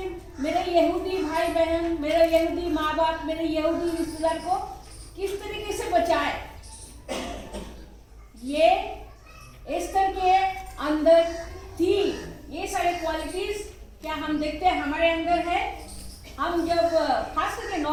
मेरे यहूदी भाई बहन, मेरे यहूदी माँ बाप, मेरे यहूदी रिश्तेदार को किस तरीके से बचाए। ये एस्तर के अंदर थी। ये सारे क्वालिटीज क्या हम देखते हैं हमारे अंदर है। हम जब खास करके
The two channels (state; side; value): identical; both; correlation 1.00